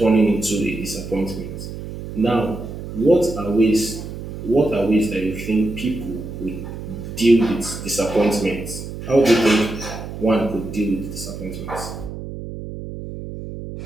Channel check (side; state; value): right; noise; hum, 9 dB below the sound